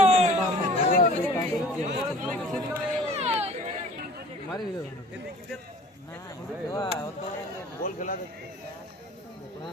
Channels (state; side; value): normal; both; correlation 0.47